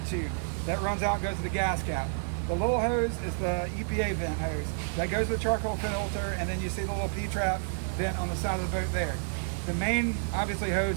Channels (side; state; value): left; silent; digital silence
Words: tube. That runs out and goes to the gas cap. The little hose is the EPA vent hose. That goes to the charcoal filter, and then you see the little P-trap vent on the side of the boat there. The main, obviously,